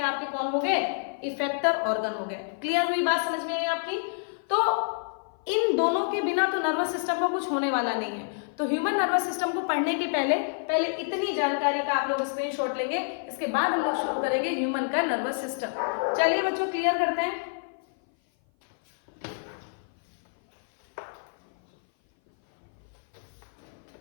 आपके कौन हो गए? इफेक्टर ऑर्गन हो गए। क्लियर हुई बात? समझ में आई आपकी? तो इन दोनों के बिना तो नर्वस सिस्टम का कुछ होने वाला नहीं है। तो ह्यूमन नर्वस सिस्टम को पढ़ने के पहले इतनी जानकारी का आप लोग स्क्रीनशॉट लेंगे, इसके बाद हम लोग शुरू करेंगे ह्यूमन का नर्वस सिस्टम। चलिए बच्चों क्लियर करते हैं।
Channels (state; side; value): silent; right; 56 dB below the other